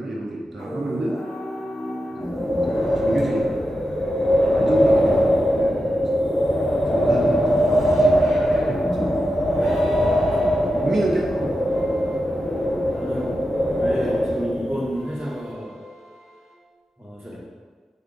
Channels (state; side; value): normal; both; correlation 0.89